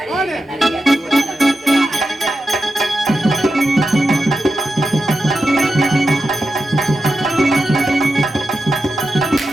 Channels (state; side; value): normal; both; correlation 0.90